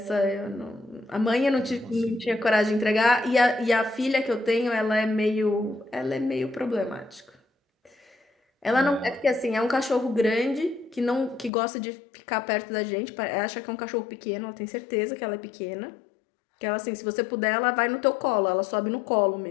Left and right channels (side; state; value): right; drops out; at 11.5 s